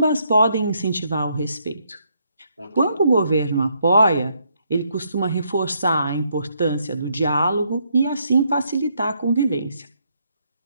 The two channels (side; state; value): both; inverted; correlation -0.74